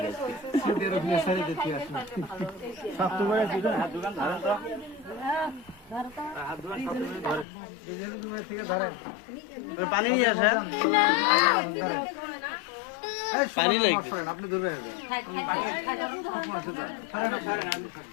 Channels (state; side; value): drops out; right; at 7.5 s